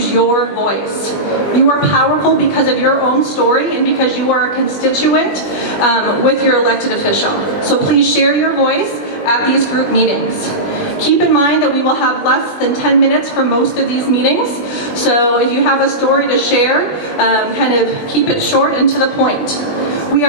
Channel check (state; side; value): late; right; 20 ms